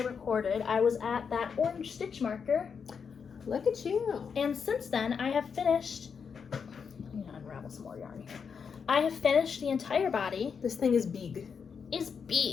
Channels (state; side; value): quieter; right; 6.3 dB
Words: recorded, I was at that orange stitch marker. Look at you. And since then, I have finished... I'm going to unravel some more yarn here. I have finished the entire body. This thing is big. Is